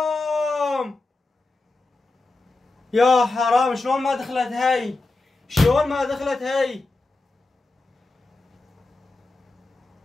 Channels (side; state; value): right; quieter; 3.2 dB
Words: يا حرام، شلون ما دخلت هاي؟ شلون ما دخلت هاي؟